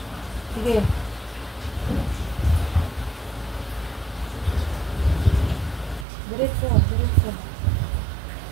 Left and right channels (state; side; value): drops out; left; at 6.1 s